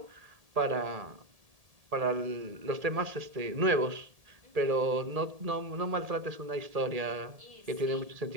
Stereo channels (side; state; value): left; late; 1.7 ms